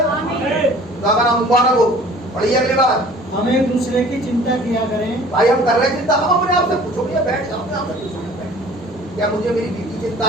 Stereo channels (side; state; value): both; normal; correlation 0.49